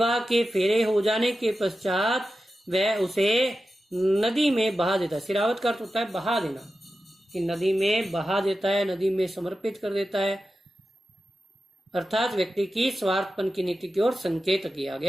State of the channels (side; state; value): both; normal; correlation 0.92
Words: के फेरे हो जाने के पश्चात वह उसे नदी में बहा देता है। सिरावत का अर्थ होता है बहा देना, कि नदी में बहा देता है, नदी में समर्पित कर देता है, अर्थात व्यक्ति की स्वार्थपन की नीति की ओर संकेत किया